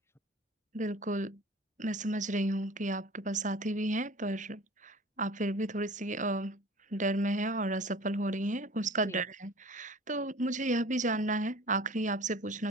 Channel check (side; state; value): both; normal; correlation 0.42